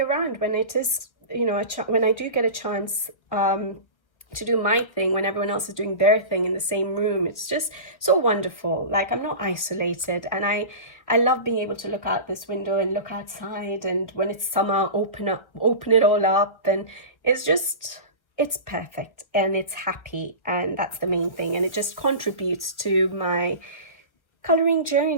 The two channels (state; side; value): late; right; 1.2 ms